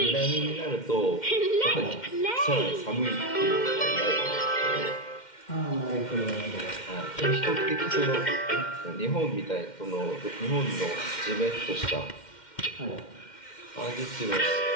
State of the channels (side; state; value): right; late; 2.1 ms